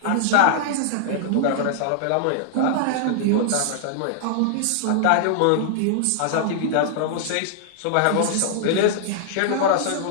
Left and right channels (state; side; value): different; both; correlation -0.01